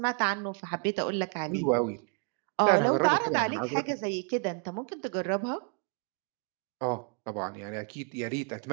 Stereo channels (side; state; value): left; quieter; 38.4 dB